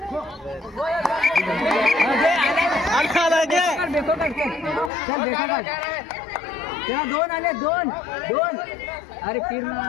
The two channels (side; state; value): right; drops out; at 4.9 s